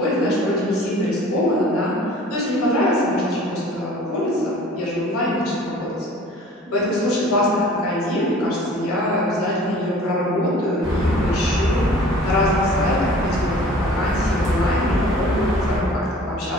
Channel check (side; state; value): both; normal; correlation 0.47